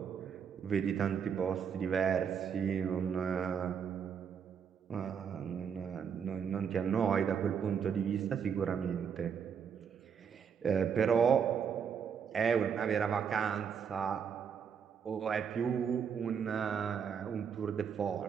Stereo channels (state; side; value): quieter; left; 7.2 dB